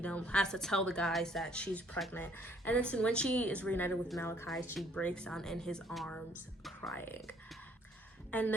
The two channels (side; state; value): both; normal; correlation 0.63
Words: know, has to tell the guys that she's pregnant. And then when she is reunited with Malachi, she breaks down in his arms crying. And